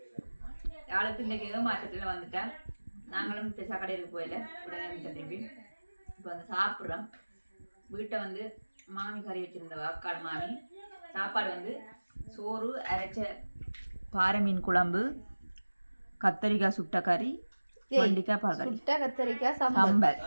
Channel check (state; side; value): inverted; both; correlation -1.00